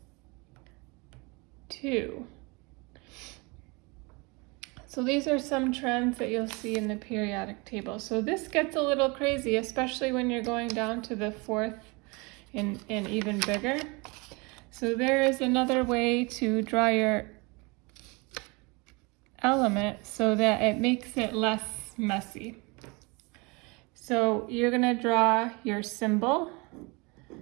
So these are some trends that you'll see in the periodic table. So this gets a little crazy, especially when you're going down to the fourth and even bigger. So there is another way to draw your element so that it makes it less messy. So you're going to draw your symbol,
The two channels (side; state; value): left; quieter; 27.7 dB